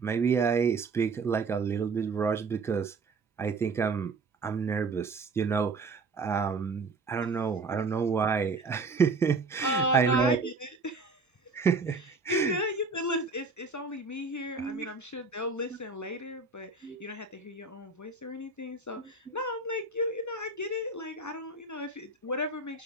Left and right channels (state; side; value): quieter; left; 4.0 dB